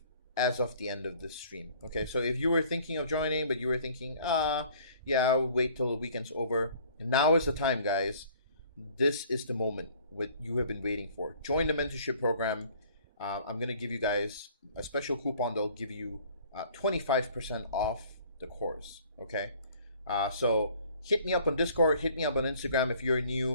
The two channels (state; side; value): inverted; both; correlation -0.54